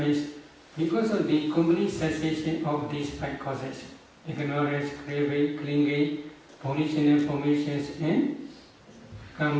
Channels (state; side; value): identical; both; correlation 1.00